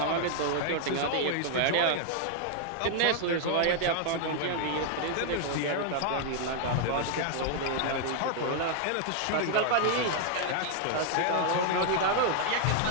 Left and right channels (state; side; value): different; both; correlation 0.00